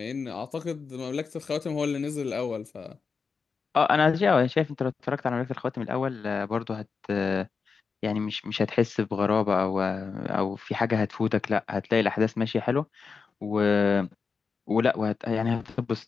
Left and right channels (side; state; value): right; quieter; 5.2 dB